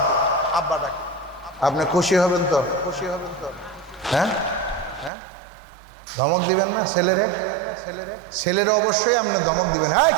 আপনি খুশি হবেন তো? হ্যাঁ, ধমক দিবেন না ছেলেরে? অবশ্যই আপনি ধমক দিবেন, হ্যাঁ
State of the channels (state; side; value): drops out; left; at 5.1 s